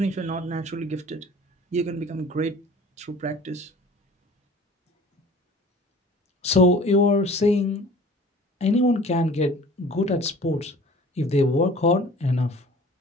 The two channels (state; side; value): normal; both; correlation 0.46